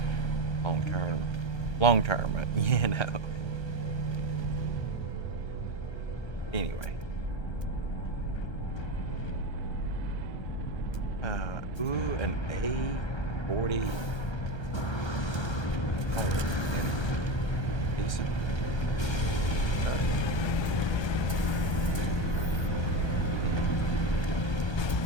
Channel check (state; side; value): late; right; 1.3 ms